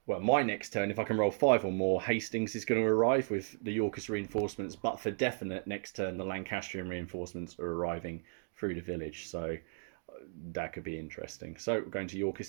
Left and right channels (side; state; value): left; silent; digital silence